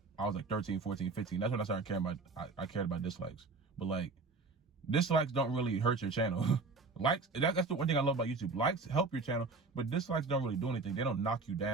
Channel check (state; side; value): quieter; left; 3.9 dB